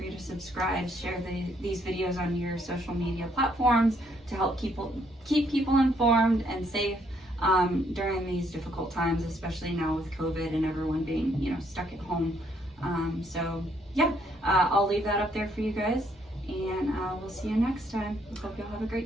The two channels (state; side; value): normal; both; correlation 0.70